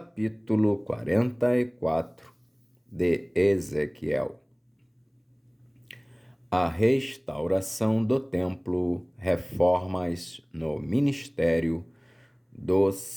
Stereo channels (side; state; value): both; identical; correlation 1.00